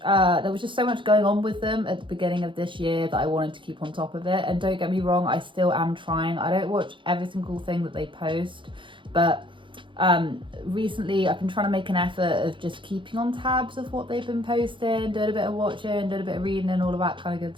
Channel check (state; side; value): late; left; 0.24 ms